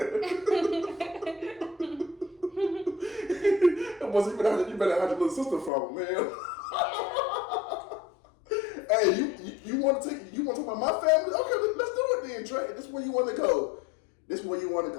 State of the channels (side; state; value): right; drops out; at 5.7 s